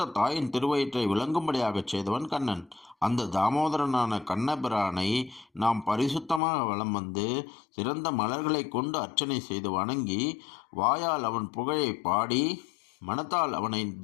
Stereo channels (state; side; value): drops out; right; at 6.4 s